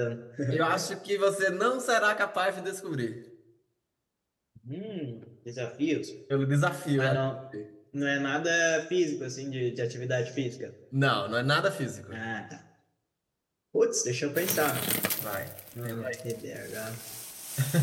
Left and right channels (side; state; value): both; identical; correlation 1.00